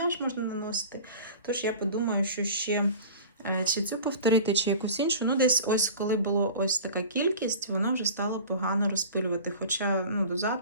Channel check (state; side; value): inverted; both; correlation -0.37